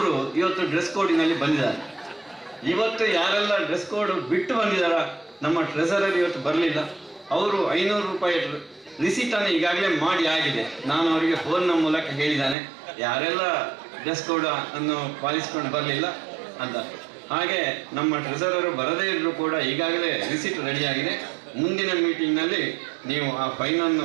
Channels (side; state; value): left; drops out; at 12.6 s